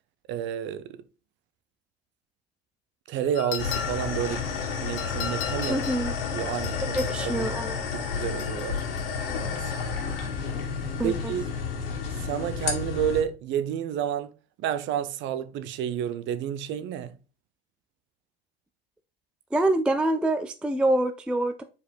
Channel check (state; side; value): normal; both; correlation 0.33